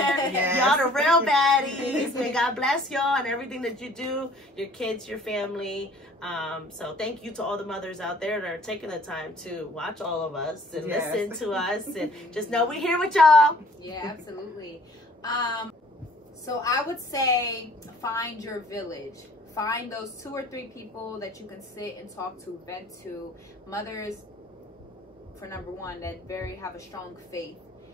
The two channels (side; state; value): both; normal; correlation 0.54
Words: Y'all the real baddies. May God bless y'all and everything that you do. Your kids, your family. So thank you to all the mothers out there that are taking the time to watch all of us and listen to us and just know we're here with y'all. Yeah, absolutely. So I would say find your village. Find those 2 or 3 people that you can sit and talk to, vent to. Mothers, for number one, that have a strong faith